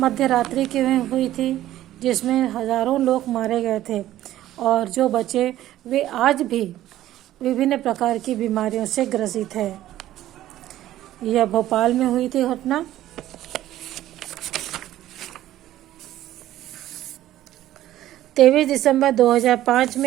रात्रि की हुई थी जिसमें हजारों लोग मारे गए थे और जो बचे वे आज भी विभिन्न प्रकार की बीमारियों से ग्रसित है। यह भोपाल में हुई थी घटना। 23 दिसंबर 2005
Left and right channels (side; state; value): left; quieter; 13.7 dB